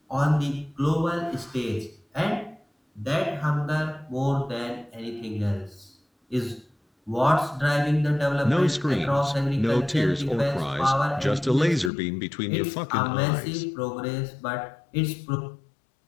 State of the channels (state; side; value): drops out; right; at 11.9 s